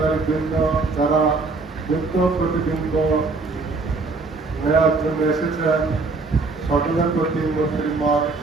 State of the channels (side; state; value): left; quieter; 3.8 dB